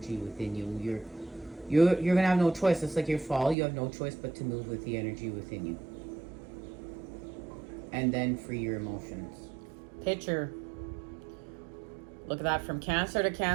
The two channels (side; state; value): left; drops out; at 3.6 s